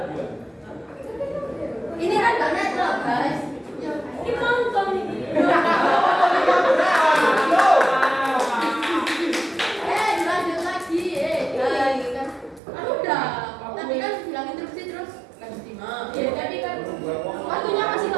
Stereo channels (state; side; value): drops out; left; at 12.6 s